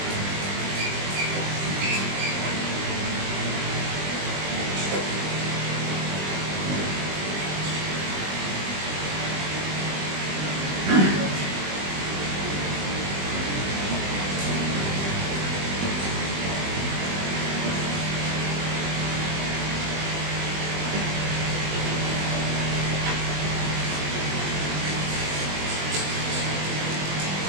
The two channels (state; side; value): late; left; 20 ms